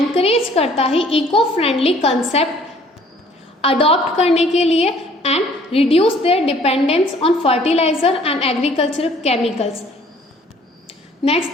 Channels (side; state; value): both; normal; correlation 0.57